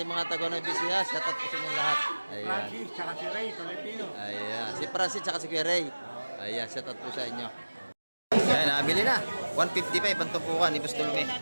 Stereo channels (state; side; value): inverted; both; correlation -1.00